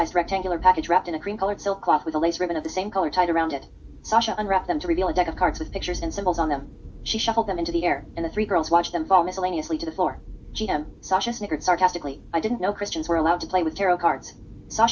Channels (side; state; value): both; identical; correlation 1.00